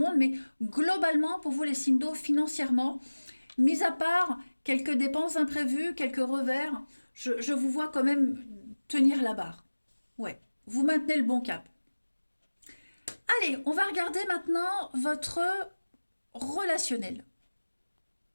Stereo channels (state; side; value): inverted; both; correlation -1.00